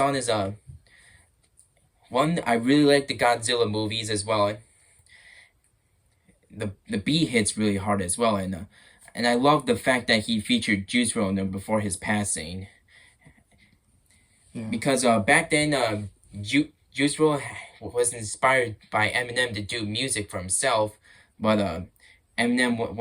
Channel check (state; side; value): identical; both; correlation 1.00